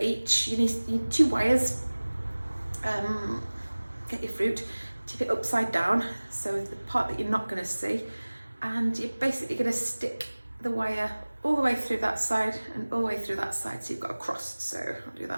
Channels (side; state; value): both; inverted; correlation -1.00